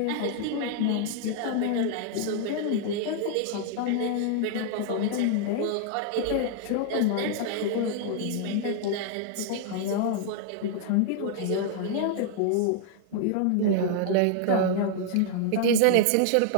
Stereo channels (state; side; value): different; both; correlation 0.00